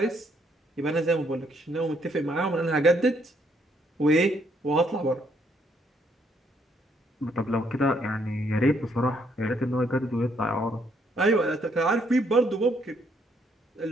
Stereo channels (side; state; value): both; normal; correlation 0.70